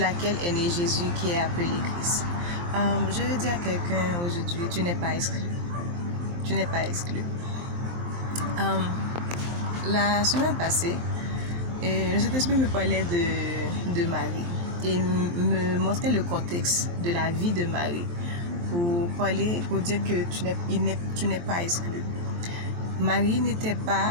est né Jésus qui est appelé Christ. Je veux dire à quelqu'un aujourd'hui, tu n'es pas exclu. Tu n'es pas exclu. La semaine passée, le Saint-Esprit me parlait de Marie et me montrait le contexte de la vie de Marie pour dire que tu n'es pas exclu. Marie n'était pas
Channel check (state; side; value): late; left; 23 ms